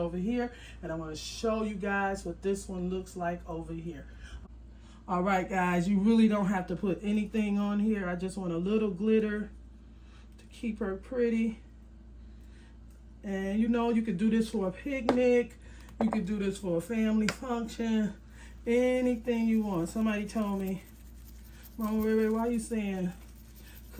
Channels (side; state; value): both; identical; correlation 1.00